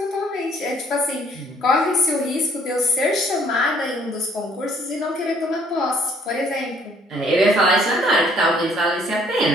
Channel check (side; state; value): both; normal; correlation 0.62